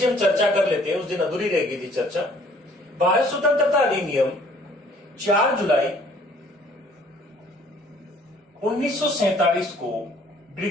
हम चर्चा कर लेते हैं। उस दिन अधूरी रह गई थी चर्चा। भारत स्वतंत्रता अधिनियम 4 जुलाई 1947 को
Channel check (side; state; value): both; normal; correlation 0.58